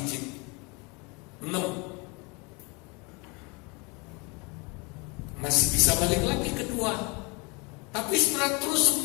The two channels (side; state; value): right; quieter; 29.4 dB